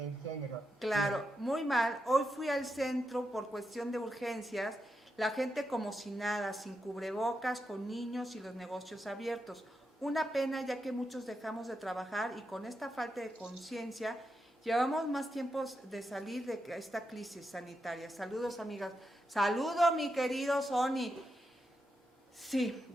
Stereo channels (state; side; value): normal; both; correlation 0.86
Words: género. Claro, sí. Muy mal. Hoy fui al centro por cuestión de urgencias. La gente como si nada, sin cubrebocas, con niños y los negocios abiertos. Una pena, ya que muchos dejamos de trabajar y con esta falta de conciencia llevamos más tiempos de salir de esta crisis sanitaria. Saludos, amigas. Saludo, mi querido Sony. Sí,